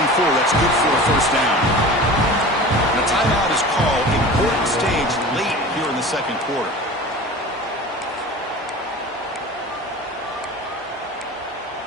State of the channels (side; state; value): both; normal; correlation 0.36